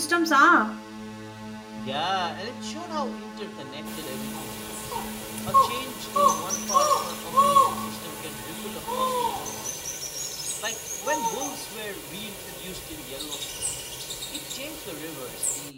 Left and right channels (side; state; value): both; identical; correlation 1.00